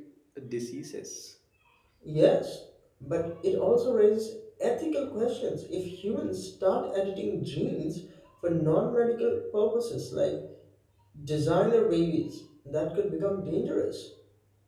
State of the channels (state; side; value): identical; both; correlation 1.00